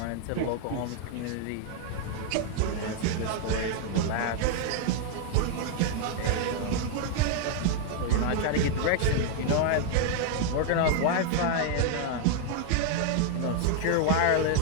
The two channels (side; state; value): both; different; correlation 0.00